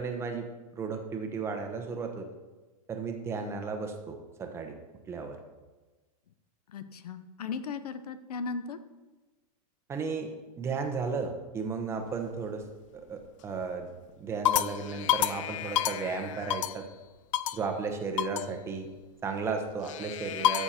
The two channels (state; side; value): normal; both; correlation 0.28